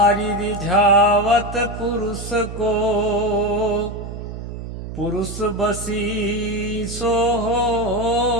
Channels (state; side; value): noise; right; hum, 9 dB below the sound